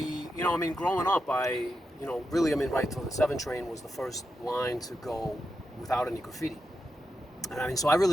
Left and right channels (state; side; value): normal; both; correlation 0.87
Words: Growing up, right till the 7 train was the first line to go without any graffiti. And so I